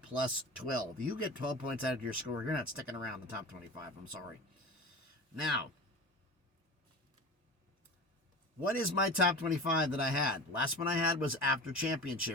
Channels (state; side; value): normal; both; correlation 0.33